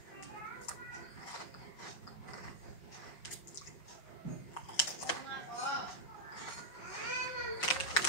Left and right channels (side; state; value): right; late; 5.5 ms